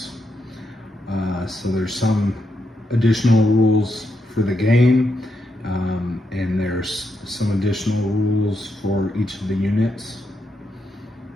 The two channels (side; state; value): both; normal; correlation 0.82